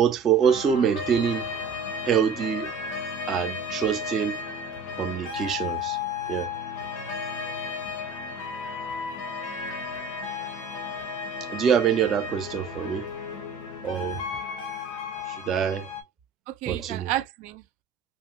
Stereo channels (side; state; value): left; quieter; 4.6 dB